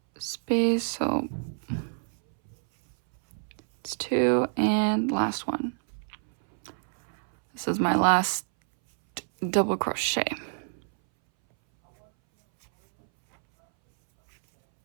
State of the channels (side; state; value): left; silent; 60 dB below the other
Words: space, so it's 2 and last one. This is my last double crochet.